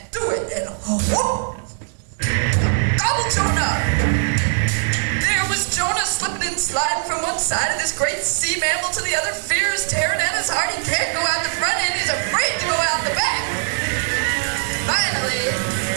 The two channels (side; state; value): left; silent; digital silence